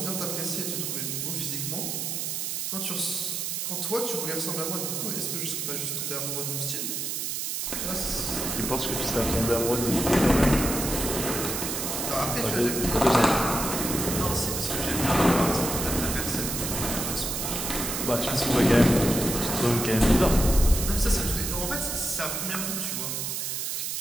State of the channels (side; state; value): right; noise; hiss, 2 dB below the sound